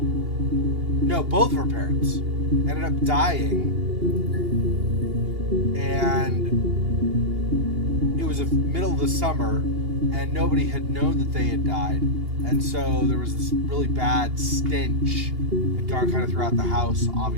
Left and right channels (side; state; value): left; late; 2.8 ms